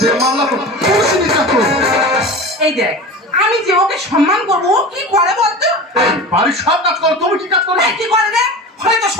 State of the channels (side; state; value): both; normal; correlation 0.32